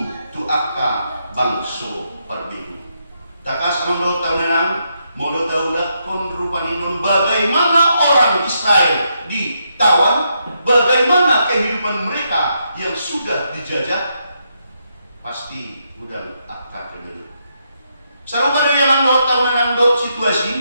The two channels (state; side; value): inverted; both; correlation -0.80